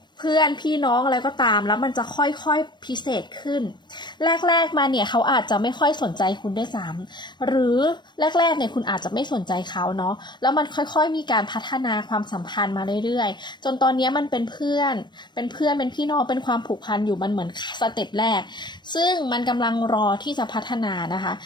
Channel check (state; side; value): late; right; 0.22 ms